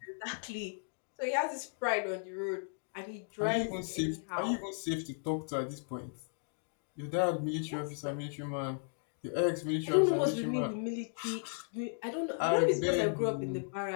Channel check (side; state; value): right; silent; digital silence